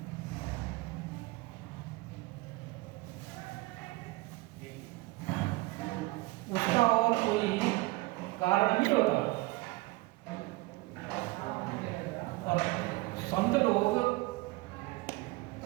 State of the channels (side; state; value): left; quieter; 22.0 dB